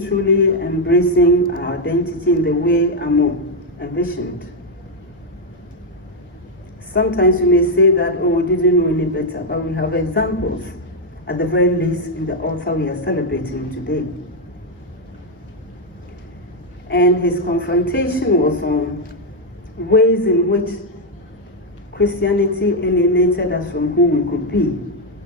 truly embracing our identity in the way Amu envisioned? Sometimes we may say that, oh, we didn't know any better, but we have examples, at the very least, in the author we are celebrating today. And his confrontation was on ways in which Christianity alienated us from who we could be.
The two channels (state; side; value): normal; both; correlation 0.01